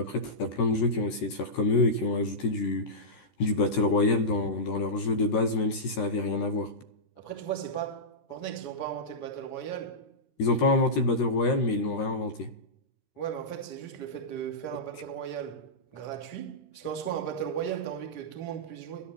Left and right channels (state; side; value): late; right; 13 ms